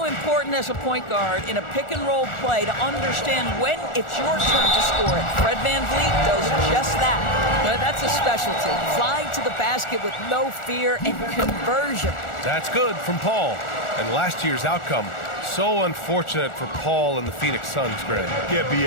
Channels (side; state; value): right; late; 1.4 ms